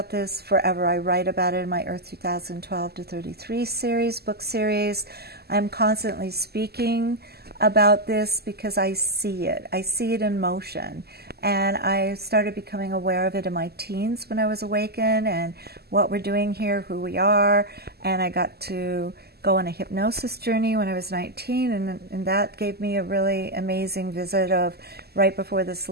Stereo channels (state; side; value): late; left; 0.46 ms